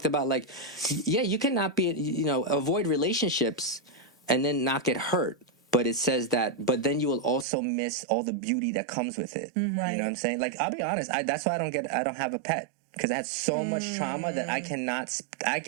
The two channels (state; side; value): drops out; left; at 7.5 s